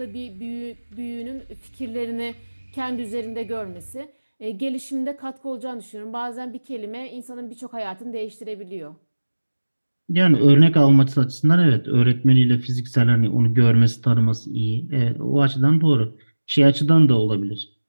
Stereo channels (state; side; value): inverted; both; correlation -1.00